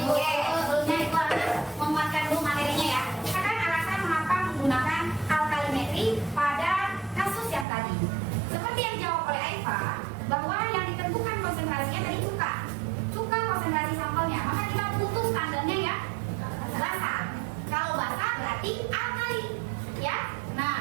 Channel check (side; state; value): left; drops out; at 7.7 s